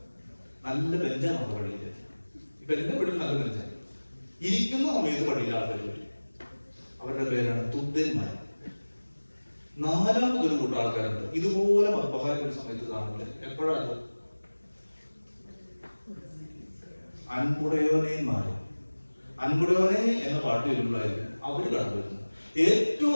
നല്ല ബെഞ്ചാണ് പള്ളിയിൽ. ഇപ്പൊ എന്റെ പള്ളിയിൽ നല്ല ബെഞ്ചാണ്. ഇരിക്കുന്ന സമയത്ത് പള്ളിയിൽ ആൾക്കാർ വരും. അവരുടെ പേരാണ് തുദ്യന്മാർ. നാലാമതൊരു കൂട്ടം ആൾക്കാരുണ്ട്, ഇതുപോലെ മദ്ബഹാരൊരു സമയത്ത് കാണുന്നത്. എപ്പോഴാണ്? അൻപുടയോനേന്മാര്. അൻപുടയോനെ എന്ന പാട്ട് വരുമ്പോഴായിരിക്കും അവര് കടന്നു വരുന്നത്. ഏറ്റവും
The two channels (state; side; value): inverted; both; correlation -1.00